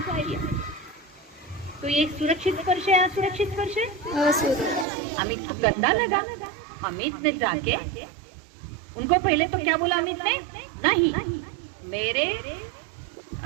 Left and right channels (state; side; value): drops out; left; at 4.9 s